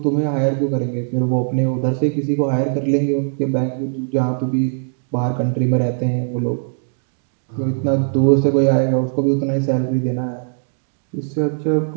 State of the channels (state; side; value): silent; left; digital silence